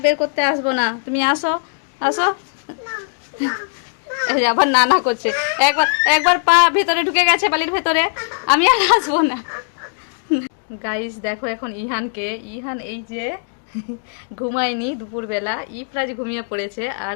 বের করতে আসবো না, তুমি আসো আসো। এই যে আবার নানা করছে, একবার পা ভেতরে ঢুকে গেছে বালির ভেতরে, আমি আর আসবো না। গাইস দেখো এখন ইহান এই যে ঘুমায়নি দুপুরবেলা, ইফরাজ ঘুমিয়ে পড়েছে, আর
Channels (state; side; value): silent; right; digital silence